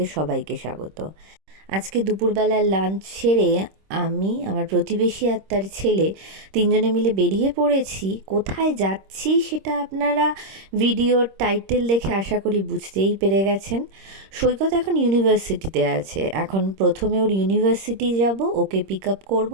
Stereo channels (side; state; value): left; late; 26 ms